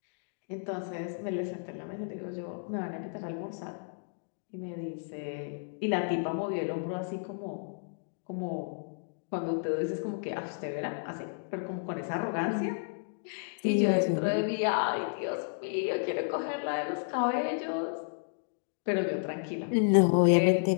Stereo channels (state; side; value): silent; right; digital silence